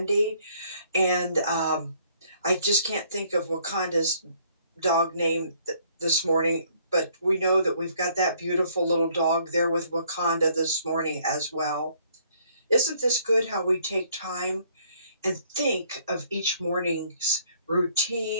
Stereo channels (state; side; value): inverted; both; correlation -0.63